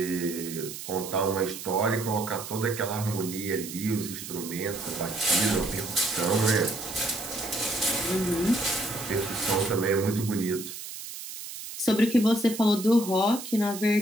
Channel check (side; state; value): right; noise; hiss, 10 dB below the sound